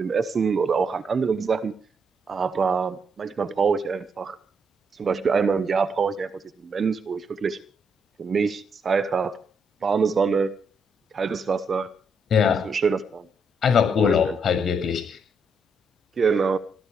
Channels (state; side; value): normal; both; correlation 0.77